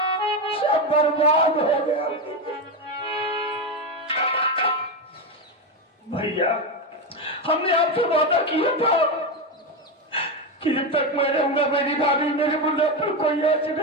सब बर्बाद हो गया। भैया हमने आपसे वादा किया था कि जब तक मैं रहूंगा मेरी भाभी मेरे मुद्दे पर कोई ऐसे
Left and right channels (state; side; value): normal; both; correlation 0.12